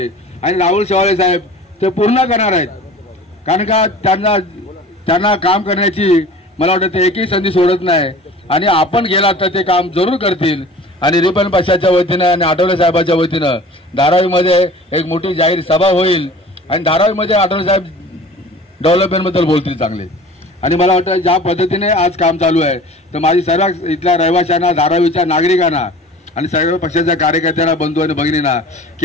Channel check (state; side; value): normal; both; correlation 0.42